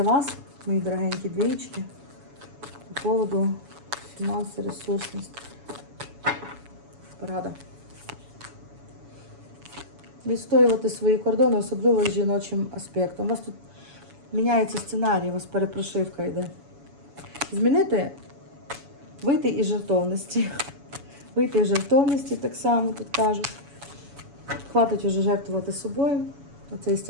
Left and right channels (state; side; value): late; left; 7.1 ms